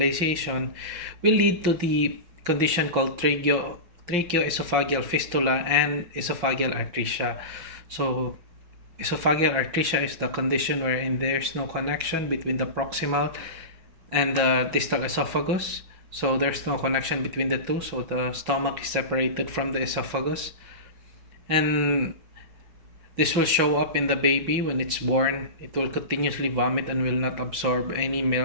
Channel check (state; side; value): late; left; 5.7 ms